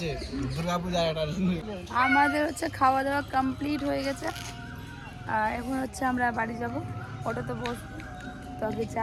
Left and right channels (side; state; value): both; identical; correlation 1.00